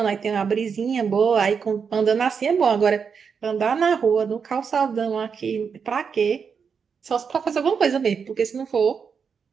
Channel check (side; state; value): left; quieter; 6.2 dB